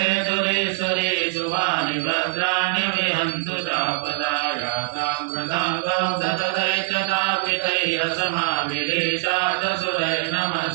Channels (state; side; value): silent; left; 64 dB below the other